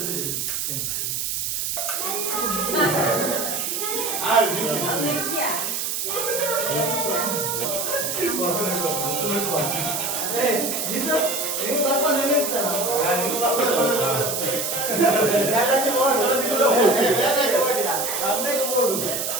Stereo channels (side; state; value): right; noise; hiss, 1 dB below the sound